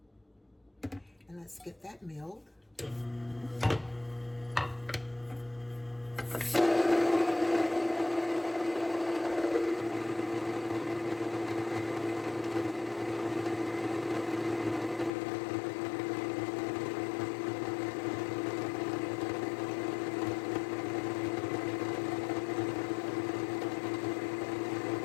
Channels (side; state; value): right; drops out; at 15.1 s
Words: And let's get that milled.